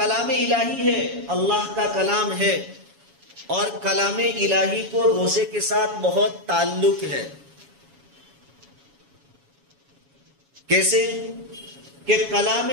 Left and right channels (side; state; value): left; late; 7.2 ms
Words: الہی ہے، اللہ کا کلام ہے، اور کلام الہی کو روزے کے ساتھ بہت تعلق ہے. کیسے کہ کلام